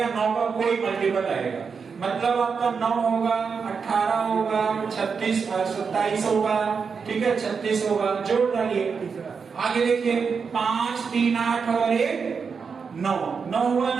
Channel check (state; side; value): quieter; left; 5.7 dB